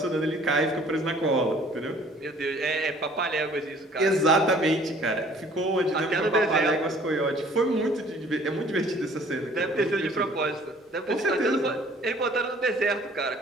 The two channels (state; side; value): normal; both; correlation 0.54